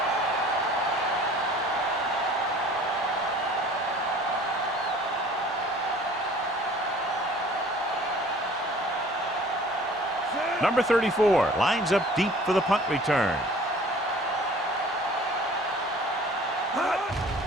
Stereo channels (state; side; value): normal; both; correlation 0.49